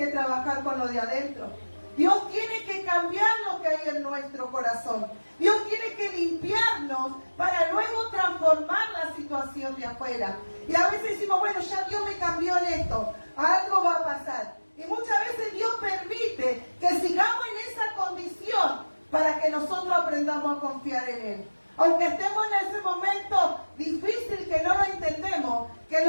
trabajar con lo de adentro. Dios tiene que cambiar lo que hay en nuestro corazón. Dios tiene que limpiarnos para luego transformar la situación de afuera. Y a veces decimos, bueno, ya Dios me cambió en esto, algo va a pasar. Y muchas veces Dios permite que sigamos en esa condición para que nosotros aprendamos a confiar en Él. Aunque estemos en ese momento difícil que no lo entendemos, que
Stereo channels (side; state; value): both; inverted; correlation -1.00